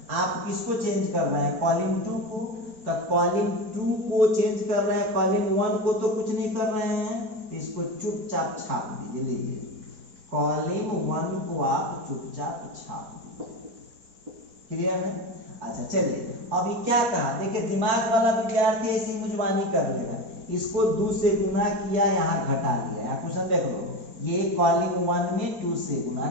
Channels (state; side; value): late; left; 4.2 ms